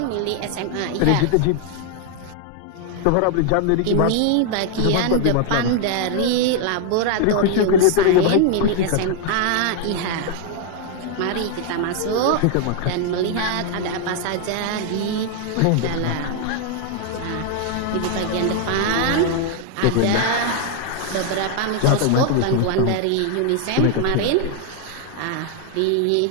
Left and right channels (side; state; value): both; different; correlation 0.00